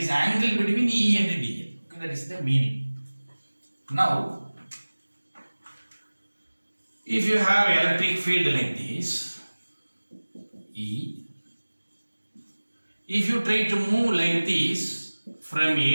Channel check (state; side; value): inverted; both; correlation -1.00